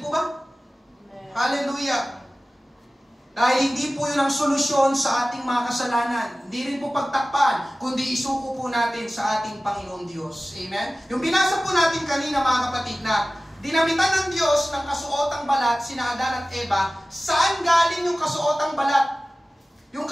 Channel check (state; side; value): normal; both; correlation 0.97